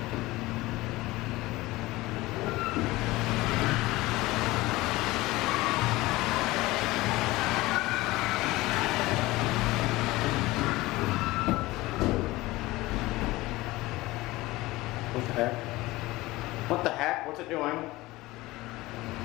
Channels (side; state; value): right; quieter; 19.5 dB